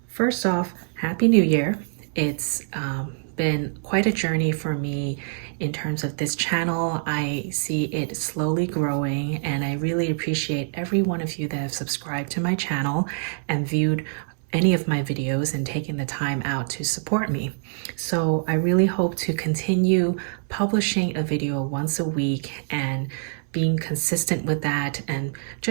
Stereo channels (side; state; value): left; silent; digital silence